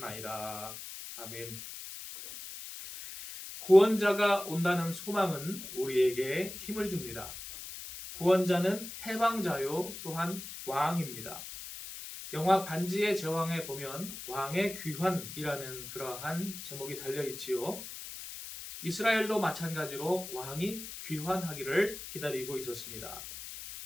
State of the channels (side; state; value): left; noise; hiss, 10 dB below the sound